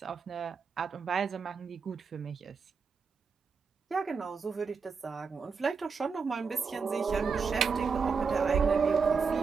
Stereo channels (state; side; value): quieter; left; 5.4 dB